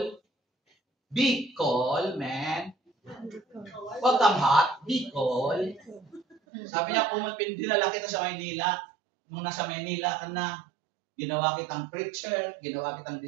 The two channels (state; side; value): drops out; left; at 6.4 s